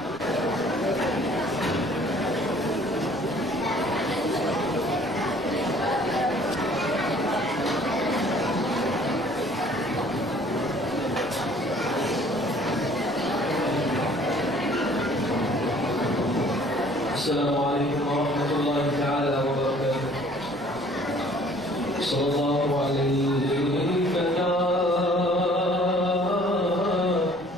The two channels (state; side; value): noise; right; rumble, 22 dB below the sound